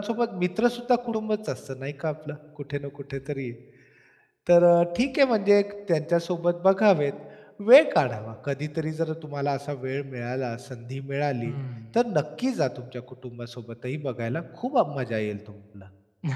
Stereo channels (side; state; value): both; identical; correlation 1.00